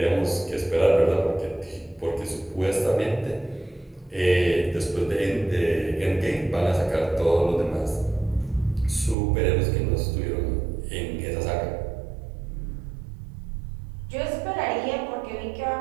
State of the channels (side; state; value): left; drops out; at 9.2 s